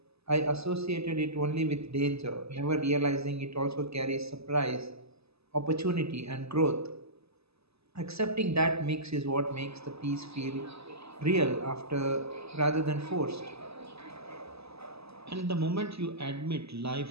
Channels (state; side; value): late; left; 0.78 ms